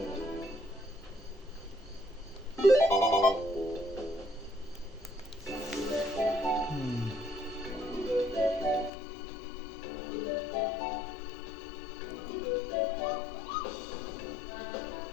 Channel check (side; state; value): right; drops out; at 8.9 s